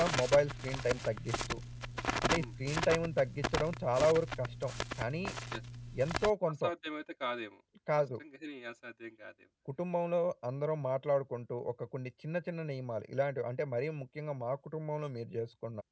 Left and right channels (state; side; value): identical; both; correlation 1.00